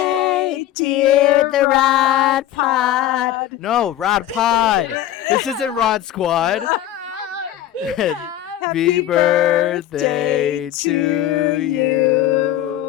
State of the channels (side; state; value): right; quieter; 12.6 dB